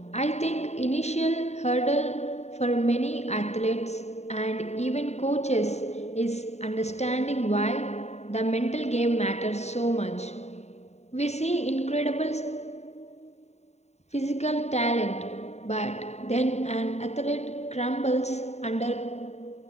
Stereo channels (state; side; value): late; right; 0.32 ms